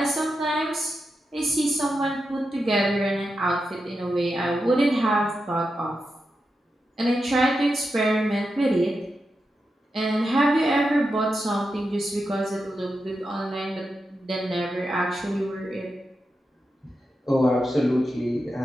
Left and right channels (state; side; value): normal; both; correlation 0.88